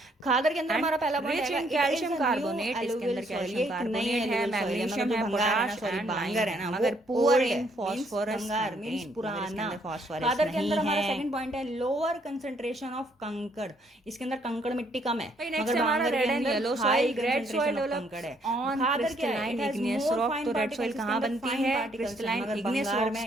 खादर के अंदर हमारा पहला पॉइंट है कैल्शियम कार्बोनेट, इसके अंदर कैल्शियम कार्बोनेट है, मैग्नीशियम है, पोटाश एंड बांगर है ना, मगर पुअर इन फास्फोरस, भंगार मींस पुराना फास्फोरस। खादर के अंदर हमारा सेकंड पॉइंट है लोअर कंसंट्रेशन ऑफ कंकड़, इसके अंदर कंकड़ मिट्टी कम है। मगर हमारा red and yellow soil, red soil develop है ऑन क्रिस्टलाइन इग्नियस रॉक। तो रेड सॉइल कहाँ बनती है? क्रिस्टलाइन इग्नियस रॉक्स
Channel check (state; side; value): normal; both; correlation 0.68